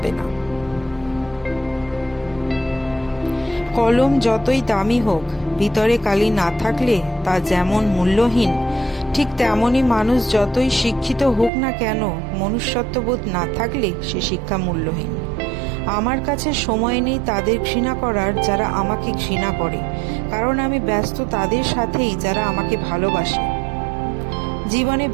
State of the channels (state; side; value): drops out; left; at 11.5 s